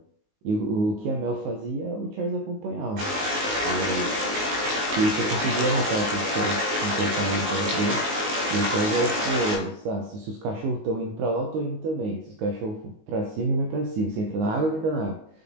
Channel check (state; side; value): late; left; 19 ms